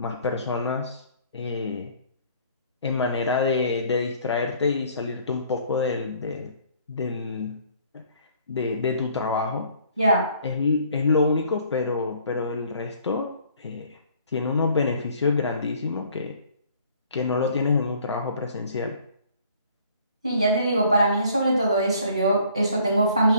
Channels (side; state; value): both; inverted; correlation -0.58